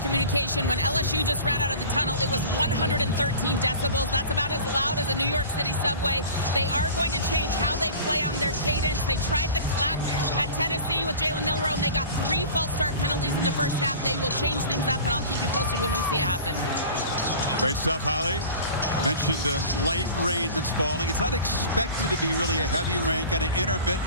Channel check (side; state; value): both; inverted; correlation -0.39